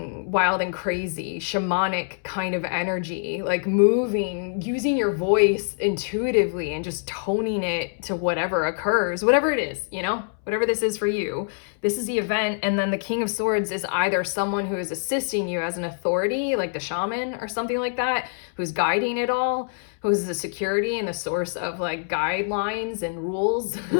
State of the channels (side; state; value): right; silent; 62 dB below the other